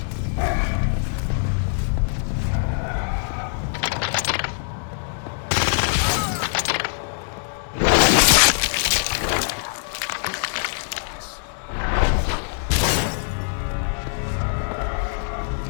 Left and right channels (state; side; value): silent; right; digital silence